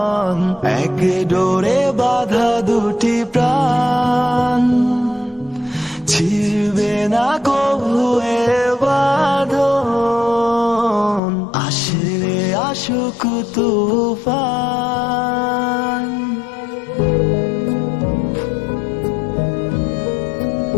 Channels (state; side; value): drops out; right; at 11.2 s